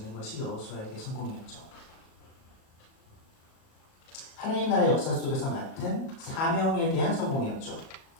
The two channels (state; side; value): late; right; 37 ms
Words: 것이 여호수아에게 성공이었죠. 하나님 나라의 역사 속에서 맡은 사명에 대한 성공이었죠.